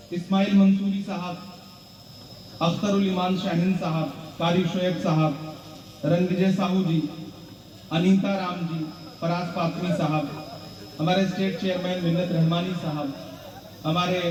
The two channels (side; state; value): both; identical; correlation 1.00